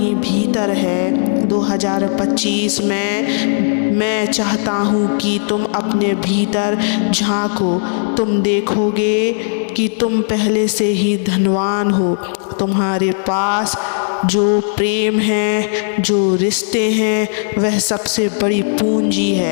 भीतर है। 2025 में मैं चाहता हूँ कि तुम अपने भीतर झांको। तुम देखोगे कि तुम पहले से ही धनवान हो। तुम्हारे पास जो प्रेम है, जो रिश्ते हैं, वह सबसे बड़ी पूंजी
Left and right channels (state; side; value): silent; right; digital silence